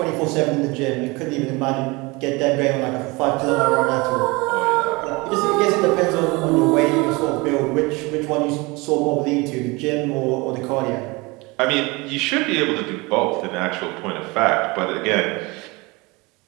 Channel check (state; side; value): quieter; left; 25.1 dB